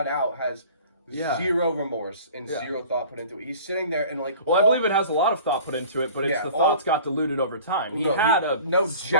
out has Yeah. Zero remorse and zero thought put into it. He's sitting there and like... Well, I believe it has a lot of thought put into it, but it's the thoughts got diluted over time. He had a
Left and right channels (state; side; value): inverted; both; correlation -0.45